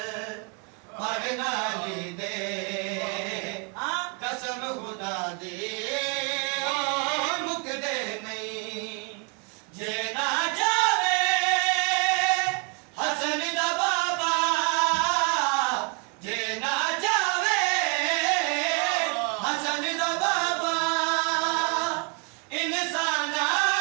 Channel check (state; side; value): quieter; left; 35.6 dB